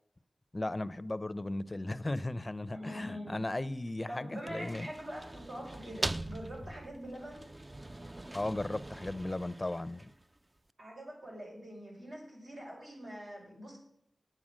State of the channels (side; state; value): both; normal; correlation 0.98